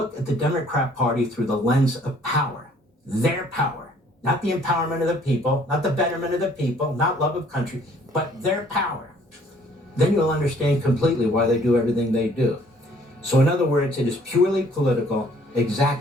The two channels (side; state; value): both; normal; correlation 0.59